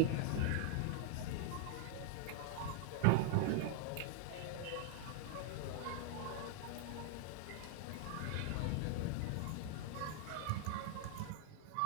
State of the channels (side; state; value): both; different; correlation 0.00